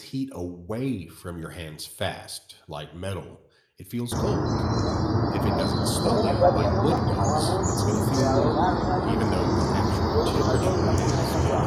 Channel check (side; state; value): both; identical; correlation 1.00